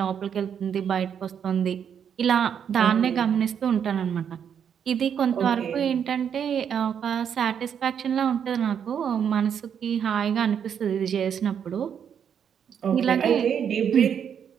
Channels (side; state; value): left; quieter; 8.0 dB